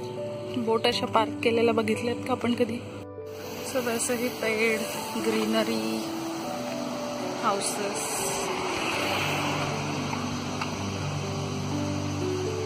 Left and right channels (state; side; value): identical; both; correlation 1.00